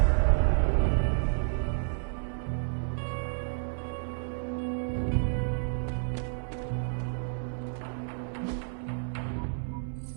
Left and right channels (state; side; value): silent; left; 57 dB below the other